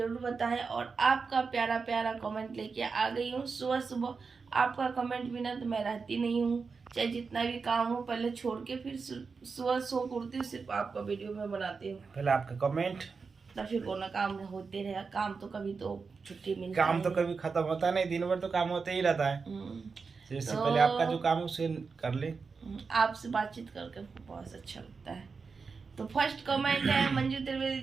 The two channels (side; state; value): left; quieter; 4.9 dB